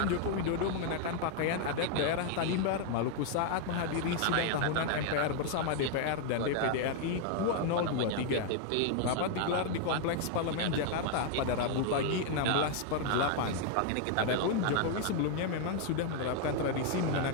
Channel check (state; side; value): different; both; correlation 0.00